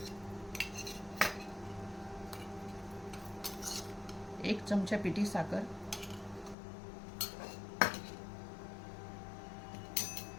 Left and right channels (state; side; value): drops out; right; at 6.6 s